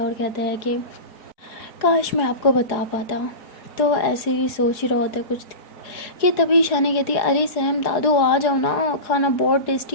और कहता है कि काश मैं आपको बता पाता। तो ऐसे ही सोच ही रहा होता है कुछ, कि तभी ईशानी कहती है अरे सैम दादू आ जाओ ना, खाना बहुत टेस्टी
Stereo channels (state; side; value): late; right; 4.8 ms